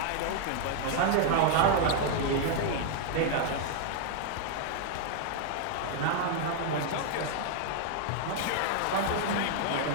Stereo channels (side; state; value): both; different; correlation 0.00